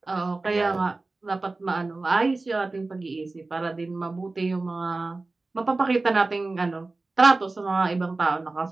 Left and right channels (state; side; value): quieter; left; 3.4 dB